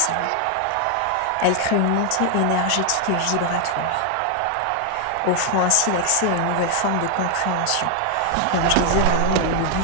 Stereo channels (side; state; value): both; different; correlation 0.00